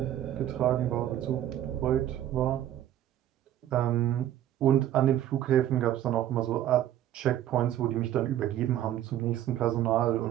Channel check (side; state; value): left; quieter; 12.0 dB